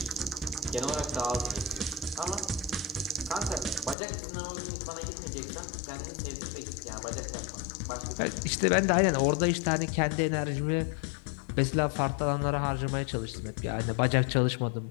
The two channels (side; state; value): right; drops out; at 4.0 s